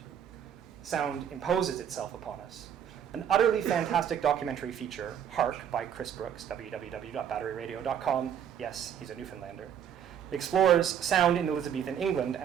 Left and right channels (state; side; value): quieter; left; 9.0 dB